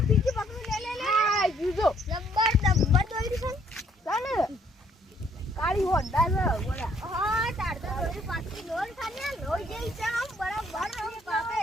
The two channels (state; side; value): normal; both; correlation 0.66